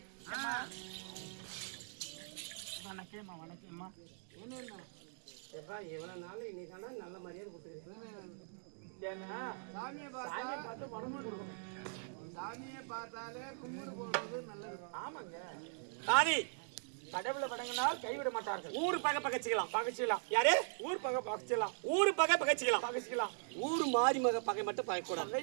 வணக்கம்மா வணக்கம்மா. எப்பா இவ்வளவு நாள் இன்னைக்கான நல்ல மரியாதை கொடுத்துருக்கேன். ஏன்னா சாமியை பார்த்து பணமும் கொடுக்கணும். சாமியை பார்த்தாலே கும்பிடு போடுறது நல்லது. ஆமாங்க தாதி, கடவுளை வணங்கினால் கைவிட மாட்டார்கள். ஊர் பகை பகைச்சிக்கலாம் பகைச்சிக்கலாம். யாரு ஊர் பகை பகைச்சிக்கலாம். ஊர் பகை பகைச்சிக்கலாம் பகைச்சிக்கலாம். ஊர் மாறி மக பகை மட்டும் பகைக்கூடாது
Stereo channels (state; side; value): silent; left; digital silence